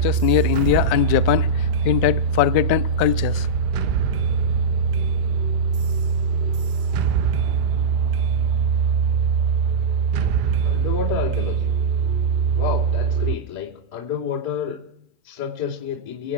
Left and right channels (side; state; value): left; late; 2.3 ms